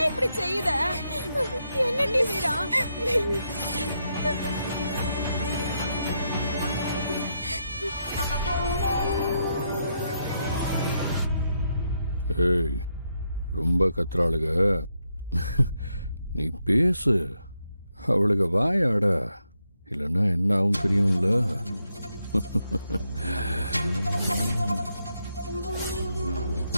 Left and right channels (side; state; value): both; inverted; correlation -0.81